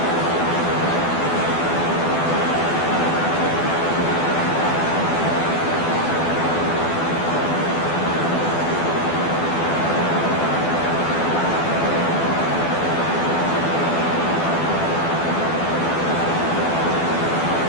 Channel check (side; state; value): right; late; 12 ms